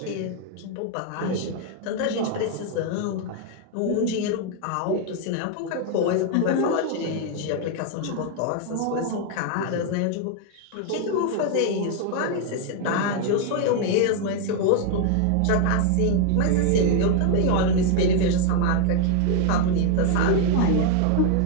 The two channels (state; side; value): different; both; correlation 0.00